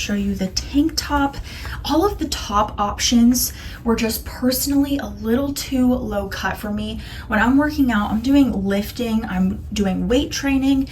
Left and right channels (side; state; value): both; identical; correlation 1.00